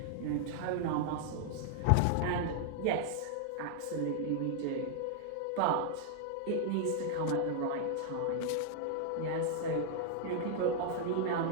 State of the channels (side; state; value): both; different; correlation 0.00